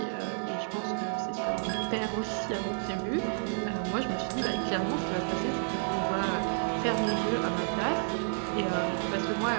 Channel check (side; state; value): left; silent; digital silence